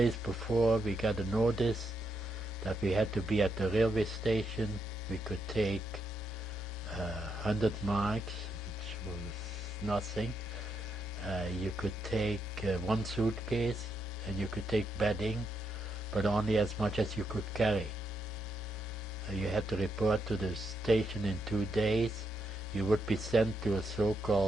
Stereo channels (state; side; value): normal; both; correlation 0.80